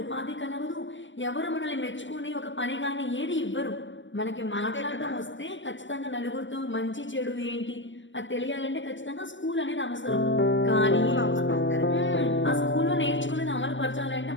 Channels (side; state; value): right; late; 0.55 ms